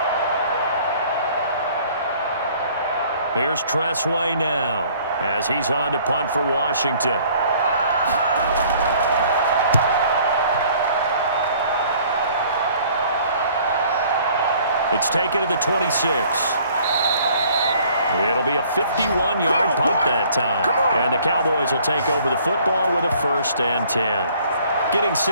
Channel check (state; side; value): inverted; both; correlation -0.57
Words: Here's Tressway now as he's on to punt for Washington. It's taken to the 26. It'll be a 51-yard punt that time. And the Cowboys will take over the football with a 1st and 10. Getting